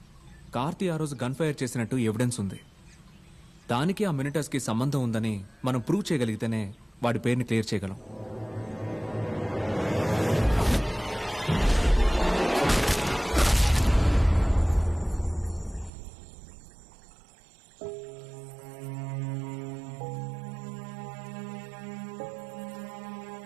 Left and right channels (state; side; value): drops out; left; at 15.9 s